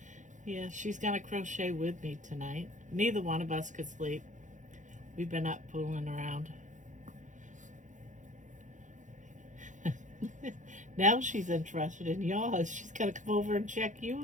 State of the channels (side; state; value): left; late; 0.36 ms